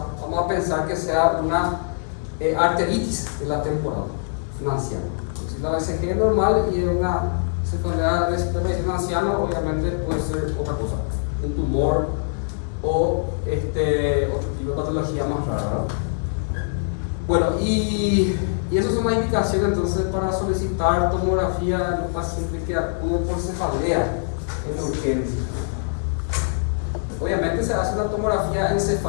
vamos a pensar que sea una arteritis de la temporal, un anciano. Si la BCG es normal y es una cefalea de aparición en anciano, obviamente puede ser otra cosa, un tumor o otro tipo de patología más rara, ¿verdad? Bueno, y esas son las indicaciones entonces para solicitar tomografía en un paciente que acude por cefalea en urgencia. Obviamente se hace una tomografía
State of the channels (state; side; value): silent; right; digital silence